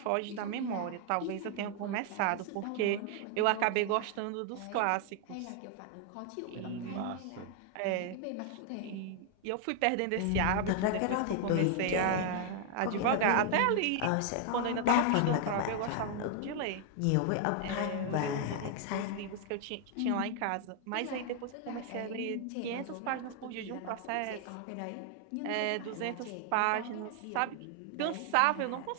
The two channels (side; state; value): both; different; correlation 0.00